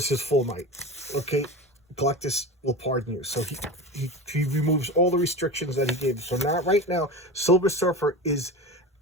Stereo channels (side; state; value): both; normal; correlation 0.28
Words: his full might. Okay, Galactus will pardon you. So he removes all the restrictions that he gave. So now, right now, Silver Surfer is